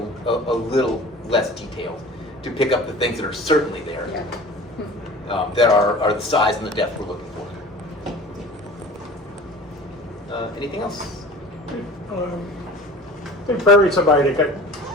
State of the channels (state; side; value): normal; both; correlation 0.42